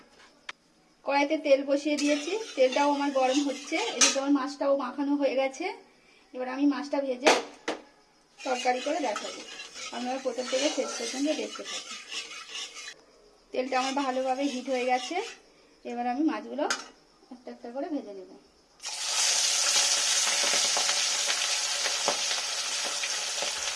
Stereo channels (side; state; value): both; identical; correlation 1.00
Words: কড়াইতে তেল বসিয়ে দিয়েছি, তেলটাও আমার গরম হচ্ছে। এদিকে আমার মাছটাও মাখানো হয়ে গেছে। এবার আমি মাছটা ভেজে তরকারি করে দেখাবো। আপনারা প্রথম থেকে শেষ পর্যন্ত দেখতে থাকুন। তেলটা আমার ভালোভাবে হিট হয়ে গেছে। এবার আমি মাছগুলো একটা একটা করে ভেজে নেব।